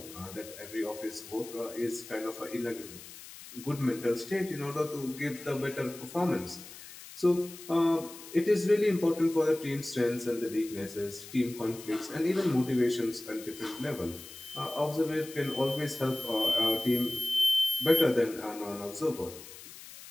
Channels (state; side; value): noise; left; hiss, 16 dB below the sound